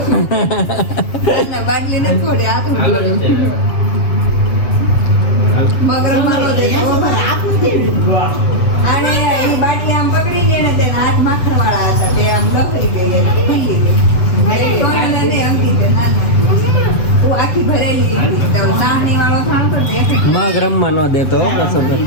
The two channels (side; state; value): right; late; 7.5 ms